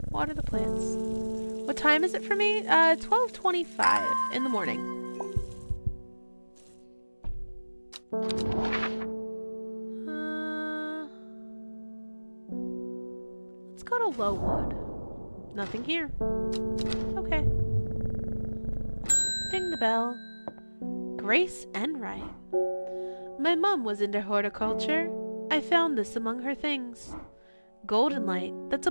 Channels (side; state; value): both; inverted; correlation -1.00